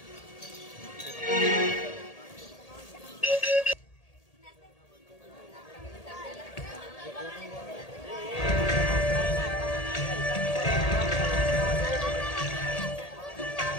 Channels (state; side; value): late; right; 1.8 ms